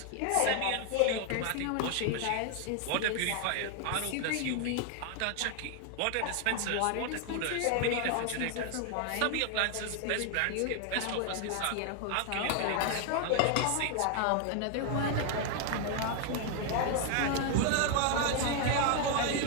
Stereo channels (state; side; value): different; both; correlation 0.00